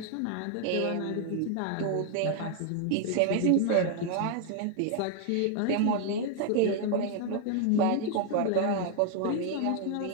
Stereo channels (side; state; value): both; different; correlation 0.00